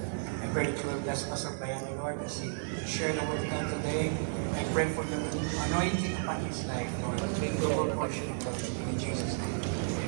I pray that you will bless Pastor Brian, Lord, as he share the word of God today. I pray for the anointing upon his life, Lord. Take double portion of God in Jesus' name.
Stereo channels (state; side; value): silent; left; digital silence